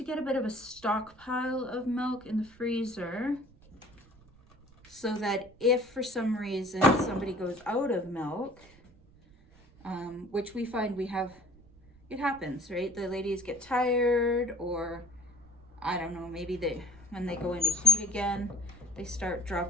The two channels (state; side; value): noise; right; rumble, 26 dB below the sound